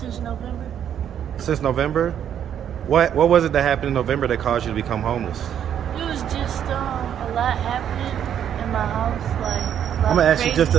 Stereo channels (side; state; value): left; quieter; 9.4 dB